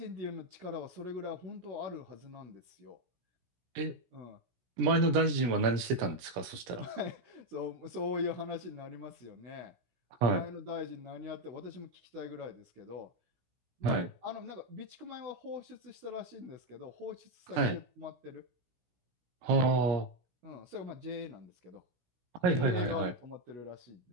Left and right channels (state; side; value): late; left; 16 ms